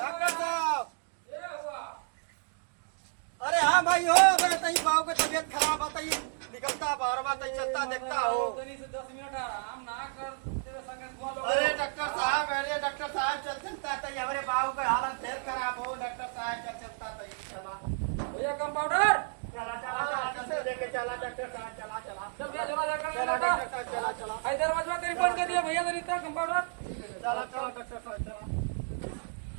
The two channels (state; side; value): silent; left; digital silence